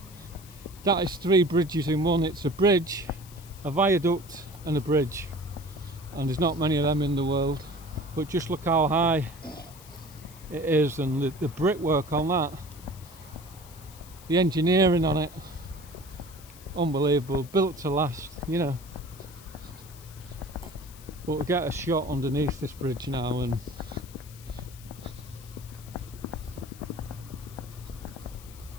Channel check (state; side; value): noise; left; hiss, 20 dB below the sound